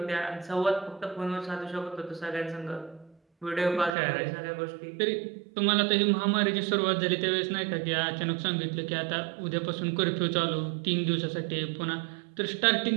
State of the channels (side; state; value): left; drops out; at 4.0 s